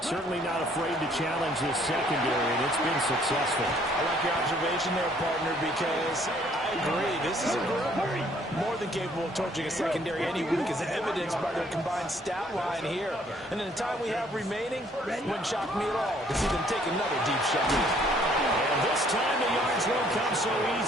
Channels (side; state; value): both; normal; correlation 0.62